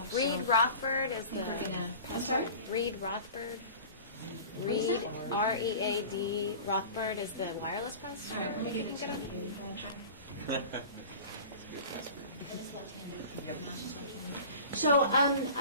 Reed Rothbard is the. I'm sorry? Reed Rothbard. Reed, R-E-A-D, Rothbard is the wireless pastor. All right, let me if you give can it get to you. Want to try? So,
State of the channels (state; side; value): inverted; both; correlation -0.39